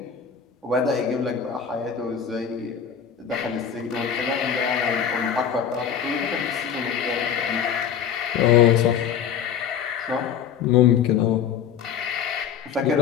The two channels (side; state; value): right; quieter; 7.9 dB